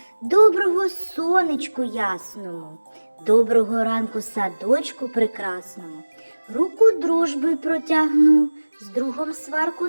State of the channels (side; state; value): both; inverted; correlation -1.00